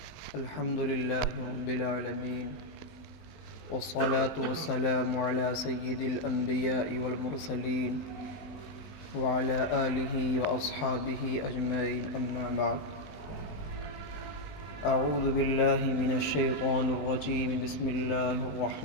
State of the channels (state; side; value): late; right; 19 ms